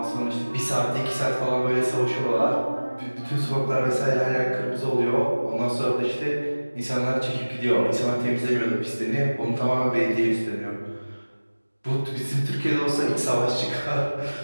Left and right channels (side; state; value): both; inverted; correlation -1.00